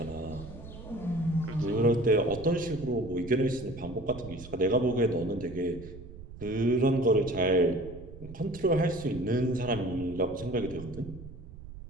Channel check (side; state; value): right; noise; rumble, 15 dB below the sound